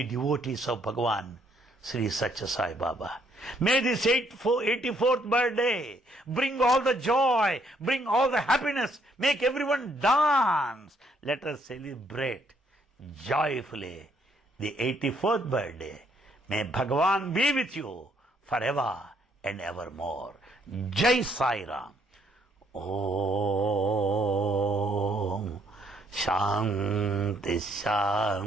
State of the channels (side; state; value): both; normal; correlation 0.69